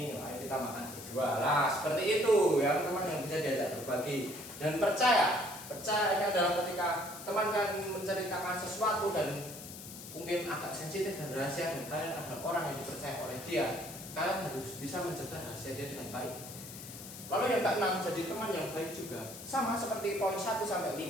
ayo kita makan berdua lah. Seperti itu, ya teman yang bisa diajak berbagi dan percaya. Percaya ini adalah ketika teman kan menceritakan sesuatu dan mungkin agak sensitif dan rahasia, dan kalian adalah orang yang dipercaya oleh dia. Kalian harus bisa menjaga rahasia dia dengan baik. Lalu yang keenam, jadi teman yang baik juga. Sama seperti poin 1 sampai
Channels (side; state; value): left; noise; hiss, 12 dB below the sound